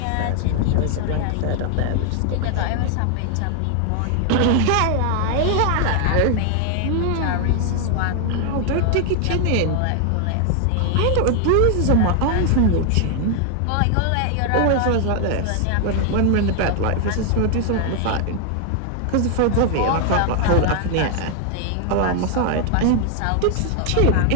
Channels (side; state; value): both; different; correlation 0.00